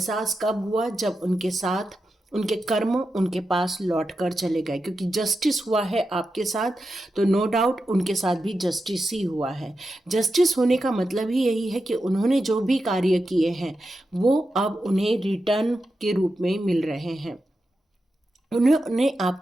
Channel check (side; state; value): both; normal; correlation 0.89